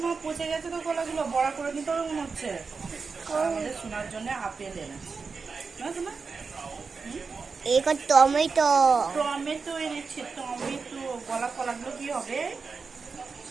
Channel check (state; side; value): quieter; left; 4.8 dB